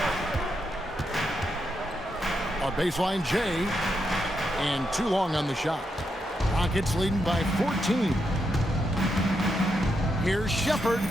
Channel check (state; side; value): normal; both; correlation 0.83